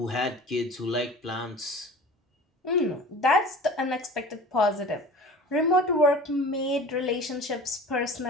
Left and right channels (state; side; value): normal; both; correlation 0.40